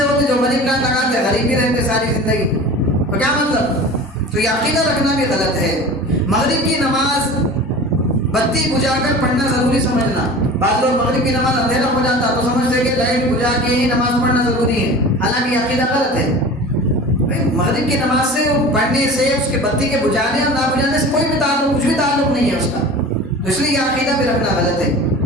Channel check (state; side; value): normal; both; correlation 0.37